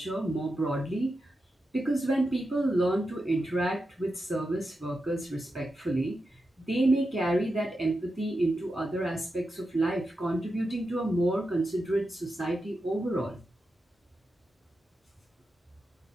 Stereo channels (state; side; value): normal; both; correlation 0.89